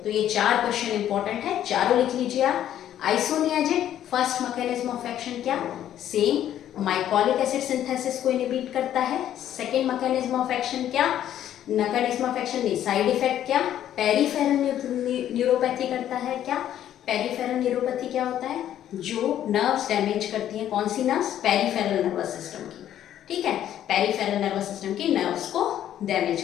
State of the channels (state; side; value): quieter; right; 11.2 dB